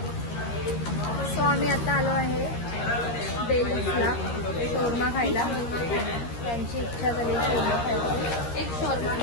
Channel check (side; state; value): right; late; 13 ms